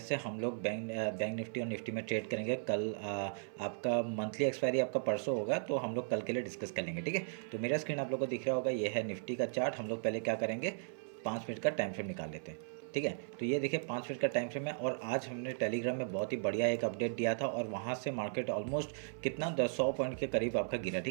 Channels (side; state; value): left; silent; 53 dB below the other